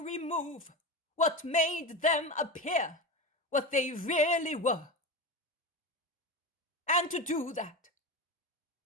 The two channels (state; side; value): normal; both; correlation 0.23